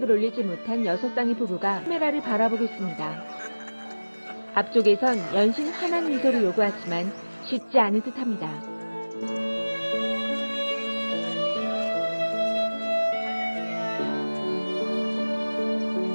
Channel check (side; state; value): both; inverted; correlation -1.00